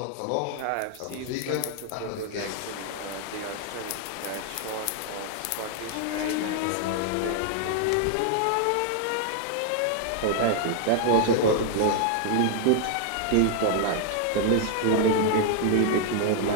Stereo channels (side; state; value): both; different; correlation 0.00